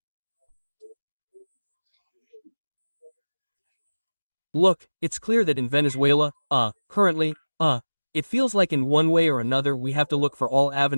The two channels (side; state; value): both; inverted; correlation -1.00